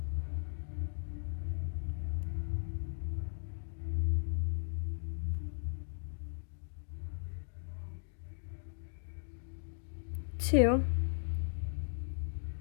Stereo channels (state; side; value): silent; right; digital silence